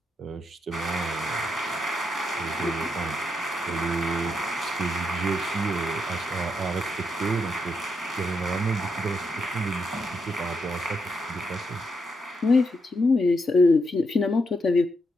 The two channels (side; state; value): both; normal; correlation 0.81